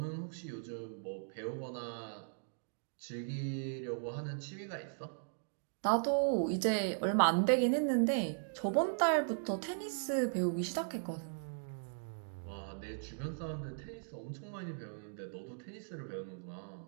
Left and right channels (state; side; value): silent; left; digital silence